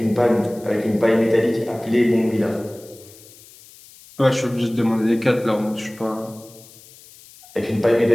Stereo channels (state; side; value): noise; left; hiss, 23 dB below the sound